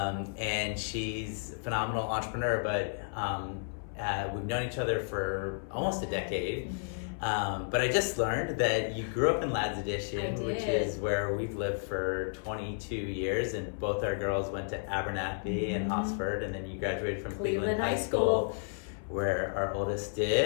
and she's a phenomenal entrepreneur, but we've known each other for almost a decade. But I just learned that you grew up in Lads Edition, which is where we've lived for 22 years, and both our girls went to Abernethy and Hosford, and then you graduated from Cleveland High School, where our oldest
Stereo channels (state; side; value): silent; right; 56 dB below the other